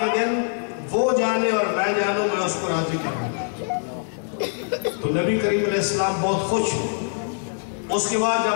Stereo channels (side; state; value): right; silent; 63 dB below the other